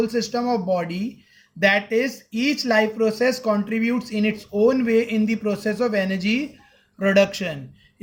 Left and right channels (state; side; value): identical; both; correlation 1.00